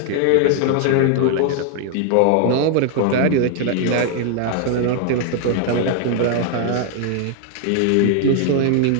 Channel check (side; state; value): both; different; correlation 0.00